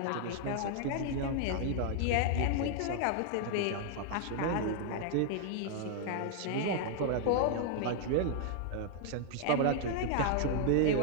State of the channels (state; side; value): different; both; correlation 0.00